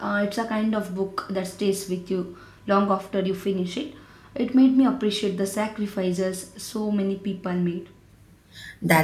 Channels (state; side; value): identical; both; correlation 1.00